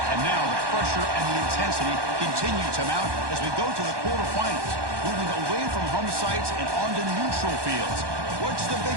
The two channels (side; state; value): left; late; 1.2 ms